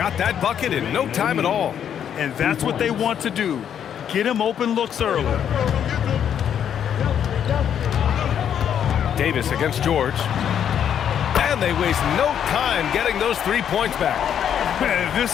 that bucket in no time at all. And that's what they want to do. Get him open looks early. Davis against George. And they waste no time getting those 3 points back. Man,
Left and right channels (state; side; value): quieter; right; 9.0 dB